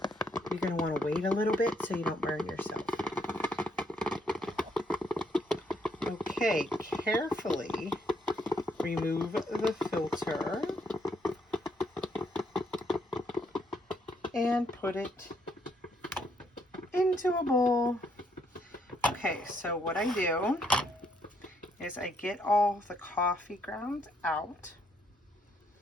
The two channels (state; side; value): normal; both; correlation 0.72